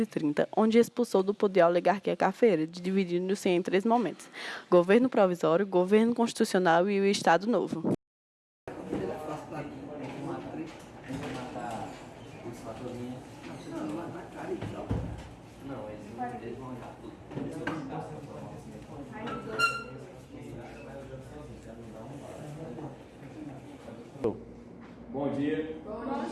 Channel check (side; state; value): both; identical; correlation 1.00